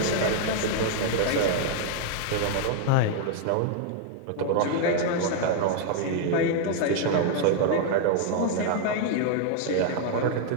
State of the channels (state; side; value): different; both; correlation 0.00